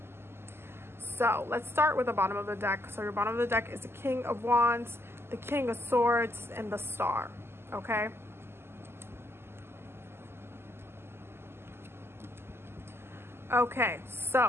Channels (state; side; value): late; left; 0.12 ms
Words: So let's start with the bottom of the deck. So your bottom of the deck is the King of Wands, the King of Swords, and the Star. Okay. Okay,